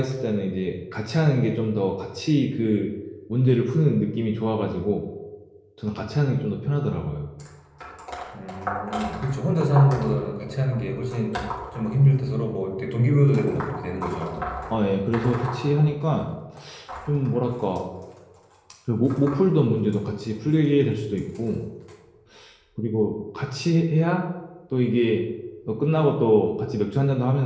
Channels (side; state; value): both; identical; correlation 1.00